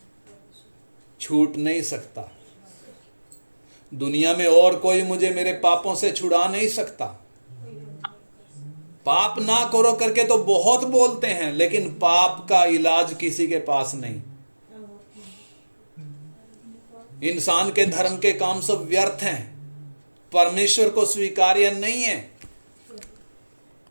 छूट नहीं सकता। दुनिया में और कोई मुझे मेरे पापों से छुड़ा नहीं सकता। पाप ना करो करके तो बहुत बोलते हैं, लेकिन पाप का इलाज किसी के पास नहीं। इंसान के धर्म के काम सब व्यर्थ हैं, परमेश्वर को स्वीकार्य नहीं है।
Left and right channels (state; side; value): inverted; both; correlation -1.00